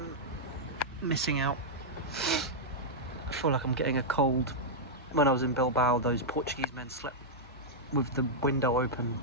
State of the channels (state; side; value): normal; both; correlation -0.07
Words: missing out. I feel like I'm getting a cold. When I was in Bilbao, those Portuguese men slept with the window open